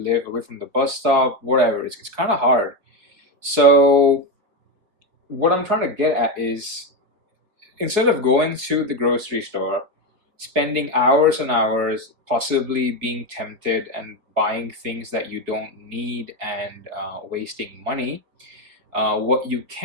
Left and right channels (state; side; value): late; left; 4.8 ms